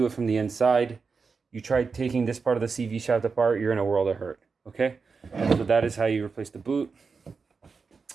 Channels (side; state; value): left; quieter; 5.0 dB